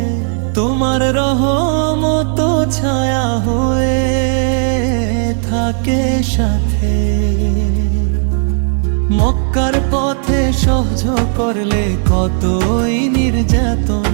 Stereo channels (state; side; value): silent; left; 60 dB below the other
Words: তোমার রহমত ছায়া হয়ে থাকে সাথে। মক্কার পথে সহ্য করলে কতই নির্যাতন,